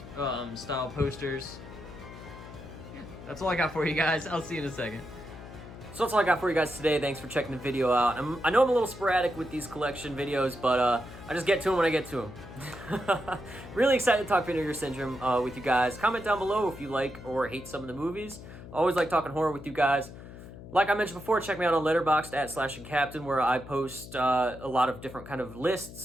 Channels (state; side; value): noise; left; hum, 15 dB below the sound